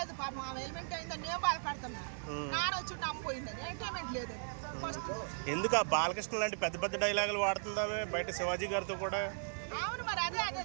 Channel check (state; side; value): silent; left; 53 dB below the other